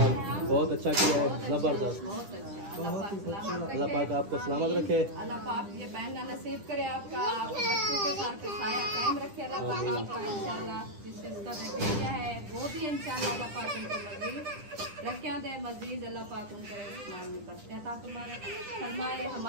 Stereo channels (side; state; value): left; late; 10 ms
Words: बहुत अच्छा किया है, जबरदस्त। बहुत अच्छा। अल्लाह पाक आपको सलामत रखे। अल्लाह पाक ये पहनना नसीब करे आपका, आप बच्चों के साथ पे साया कायम रखे अल्लाह पाक आपका इंशाल्लाह। जिससे उसका भेजा है वो भी इंशाल्लाह अल्लाह पाक उनको मजीद रखिया दे, मजीद अल्लाह पाक उनको इस्लाम में बरकत अता फरमाए।